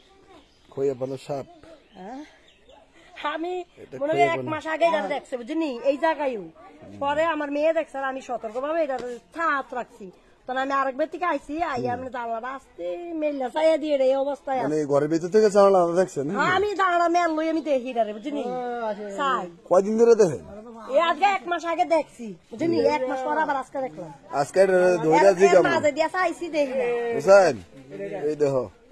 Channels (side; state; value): both; identical; correlation 1.00